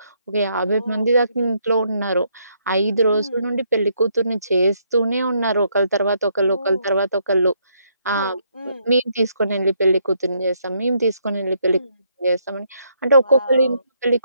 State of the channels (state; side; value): inverted; both; correlation -0.73